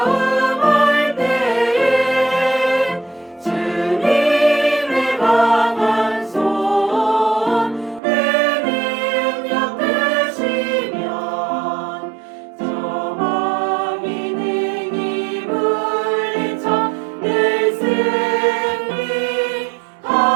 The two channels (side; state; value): left; drops out; at 8.0 s